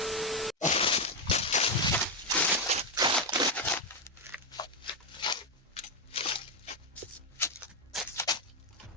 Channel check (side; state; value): both; normal; correlation 0.05